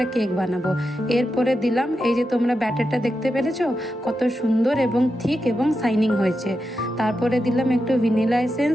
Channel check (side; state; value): both; normal; correlation 0.88